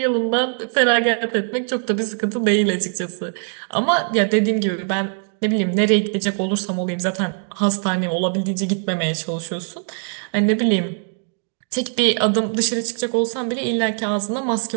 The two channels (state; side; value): silent; left; 55 dB below the other